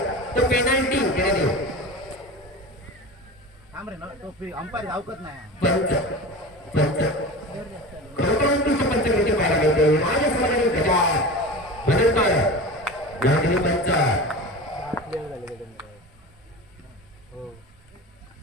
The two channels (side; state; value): both; normal; correlation 0.31